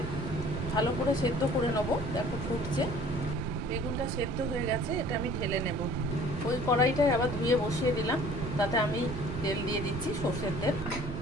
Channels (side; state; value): right; noise; rumble, 6 dB below the sound